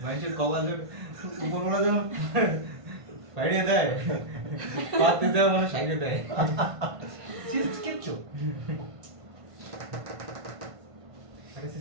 মানুষের কপালের উপরওয়ালা যখন বাইরে দেয় পাতে দেয় মানে সাইডে দেয় সিস্ট কিচ্ছু আরে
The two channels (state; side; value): late; left; 1.5 ms